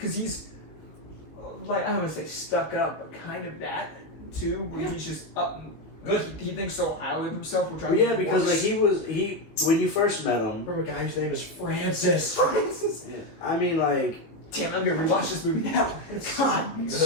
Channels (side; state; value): right; late; 18 ms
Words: he's like I don't want to say stuck up, but kind of that too, where he's just Good. He thinks so highly of himself. Which Well, yeah, because like when you first met him. From a guy whose name is Francis. Francis. Yeah, I mean, like. Damn, I'm gonna rewatch this movie now. God. Good.